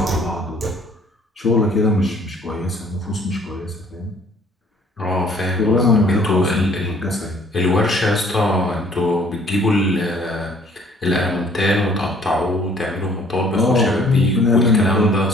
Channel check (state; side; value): normal; both; correlation 0.58